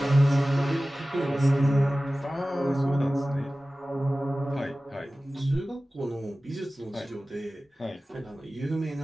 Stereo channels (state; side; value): normal; both; correlation 0.96